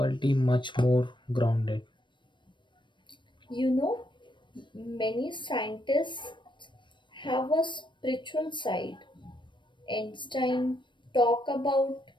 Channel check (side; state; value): right; late; 0.23 ms